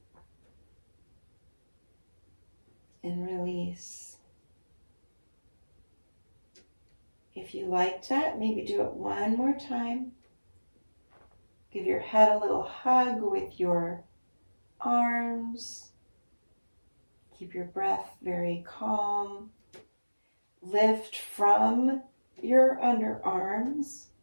and release. If you liked that, maybe do it one more time. Give your head a little hug with your arms. Keep your breath very calm. Lift from your underarms.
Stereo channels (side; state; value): both; inverted; correlation -1.00